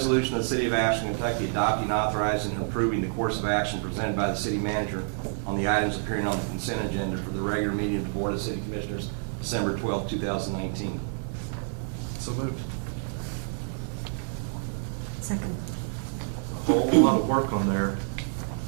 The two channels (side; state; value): left; silent; digital silence